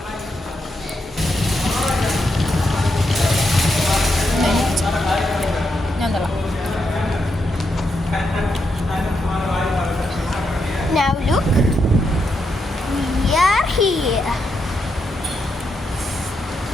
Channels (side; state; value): both; normal; correlation 0.82